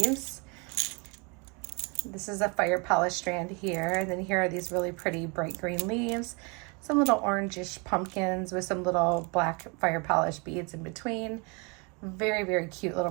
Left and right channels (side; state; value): left; quieter; 31.5 dB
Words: This is a fire polish strand here. And then here are these really pretty bright green leaves. Some little orangish pumpkins with some little black fire polish beads in between. Very, very cute